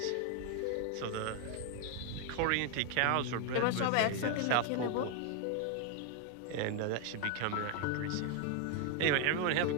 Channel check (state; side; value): different; both; correlation 0.01